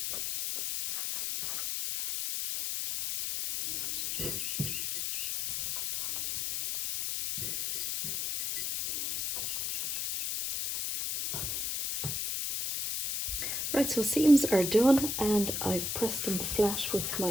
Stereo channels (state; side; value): noise; left; hiss, 1 dB below the sound